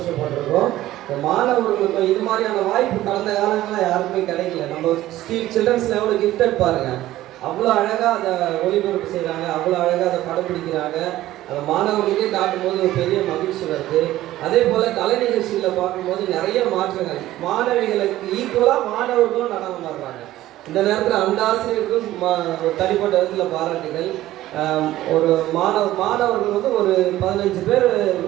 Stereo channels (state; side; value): quieter; left; 15.0 dB